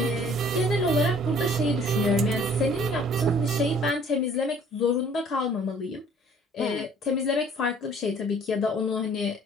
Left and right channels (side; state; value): both; normal; correlation 0.55